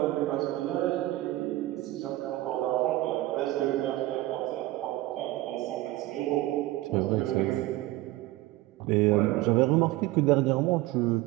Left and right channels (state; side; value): quieter; left; 17.4 dB